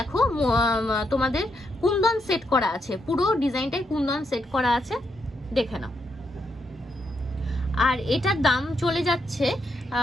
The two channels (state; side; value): normal; both; correlation 0.79